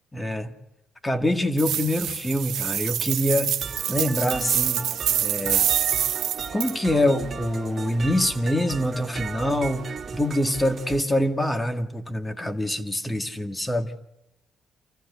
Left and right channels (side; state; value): both; normal; correlation 0.80